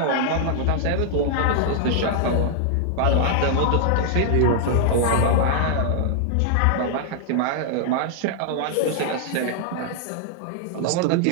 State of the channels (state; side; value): different; both; correlation -0.01